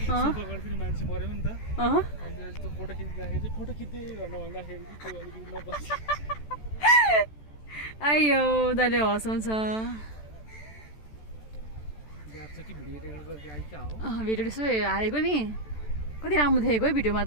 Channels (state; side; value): late; right; 14 ms